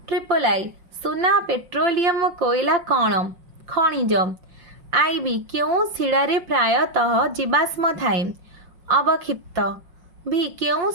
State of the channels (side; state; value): left; late; 5.5 ms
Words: ट्रिपल आई सुना, पेट्रोलियम, कोयला कौन? खनिज। आईबी क्यों शिलारे प्रायतः जीवाश्म थाए? अवक्षिप्त। भी क्यों